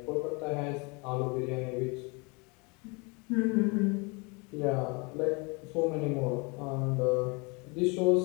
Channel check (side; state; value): right; quieter; 30.0 dB